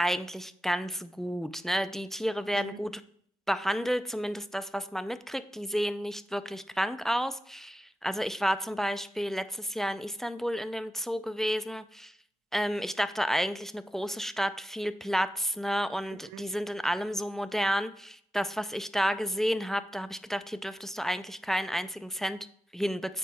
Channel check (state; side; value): normal; both; correlation 0.92